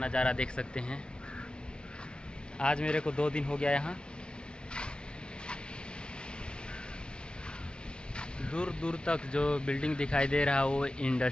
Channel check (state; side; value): late; right; 0.055 ms